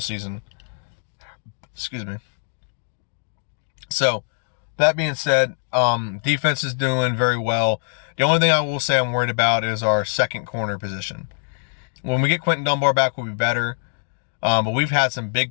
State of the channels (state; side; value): silent; right; 63 dB below the other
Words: season. Excuse me. So, that being said, defense is doing very well. The only thing I will say I'm worried about is our second corner position. When we get Quentin Dunbar back, we'll be better. But we've had some big